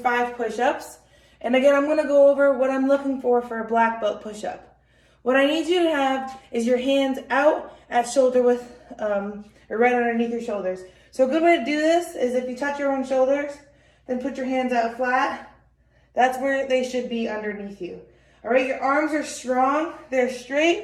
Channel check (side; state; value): both; identical; correlation 1.00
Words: push-ups. And again, I'm gonna go over what I'm looking for a black belt push-up. What I need you to have is your hands out at shoulder width, or right underneath your shoulders. So a good way to do this is if you touch your own shoulders, then put your hands out flat. That's where they should be underneath you. All right, your arms are strong, they're